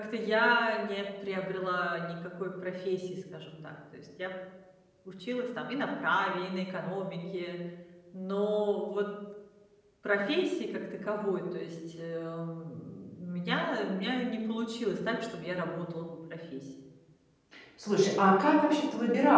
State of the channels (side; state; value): both; identical; correlation 1.00